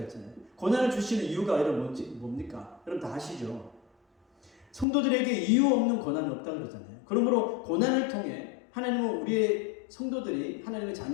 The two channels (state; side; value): drops out; right; at 4.9 s